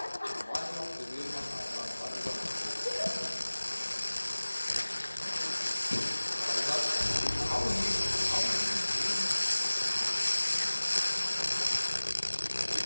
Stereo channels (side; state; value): both; inverted; correlation -1.00